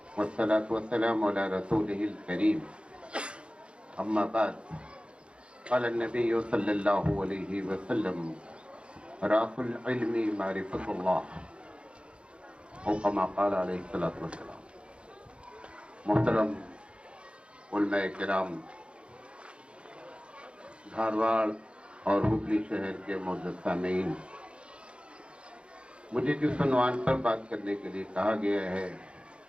والصلاة والسلام علی رسولہ الکریم اما بعد قال النبی صلی اللہ علیہ وسلم راس العلم معرفۃ اللہ او کما قال علیہ الصلوۃ والسلام۔ محترم علماء کرام، دھارواڑ اور ہبلی شہر کے معزز سامعین، مجھے جس عنوان پر بات کرنے کے لیے کہا گیا ہے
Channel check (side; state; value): left; late; 0.057 ms